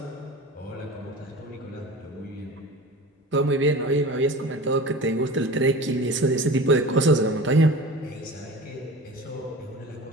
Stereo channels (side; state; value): both; normal; correlation 0.36